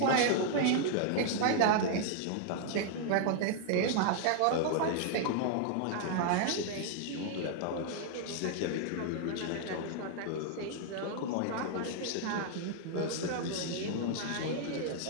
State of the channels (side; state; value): both; different; correlation 0.00